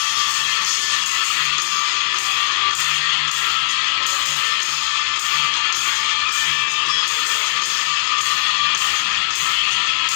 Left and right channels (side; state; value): right; silent; 67 dB below the other